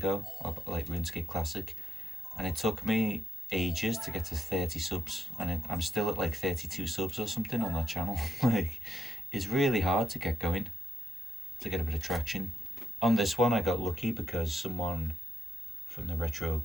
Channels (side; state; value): both; normal; correlation 0.84